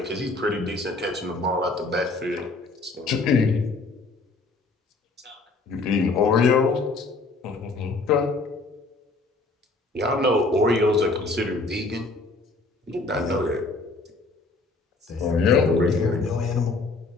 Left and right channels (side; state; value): right; quieter; 3.5 dB